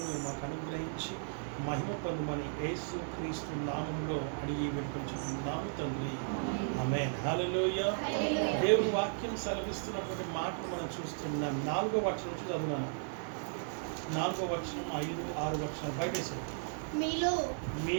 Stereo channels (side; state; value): left; silent; digital silence